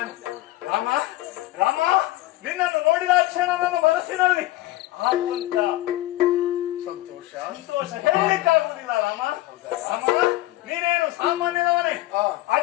ರಾಮ ರಾಮ, ನಿನ್ನನ್ನು ನೋಡಿದ ಕ್ಷಣ ನನ್ನ ಮನಸ್ಸಿನಲ್ಲಿ ಆಗುವಂತ ಸಂತೋಷ ಹೇಳಲಿಕ್ಕಾಗುವುದಿಲ್ಲ. ರಾಮ ರಾಮ, ನೀನೇನು ಸಾಮಾನ್ಯದವನೇ?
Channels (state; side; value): quieter; right; 17.0 dB